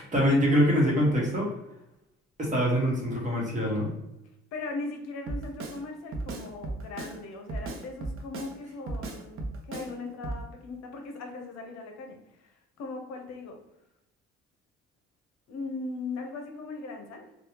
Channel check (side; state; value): both; normal; correlation 0.58